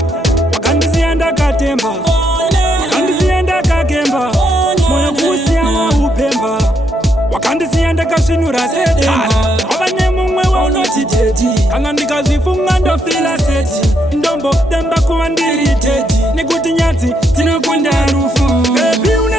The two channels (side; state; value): both; normal; correlation 0.76